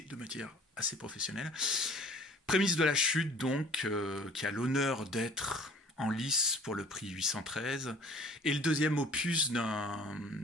de manière assez professionnelle. Prémisse de la chute, donc, qui a l'honneur d'être en lice pour le prix 813, et le deuxième opus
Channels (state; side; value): normal; both; correlation 0.50